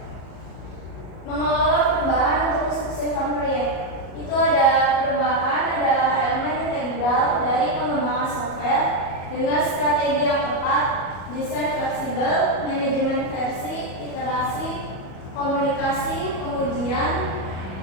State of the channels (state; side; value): late; right; 37 ms